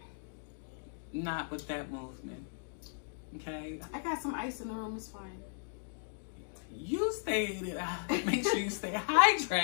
Not with that movement. Okay? I got some ice in the room. It's fine. You make sure you stay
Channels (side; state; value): right; silent; digital silence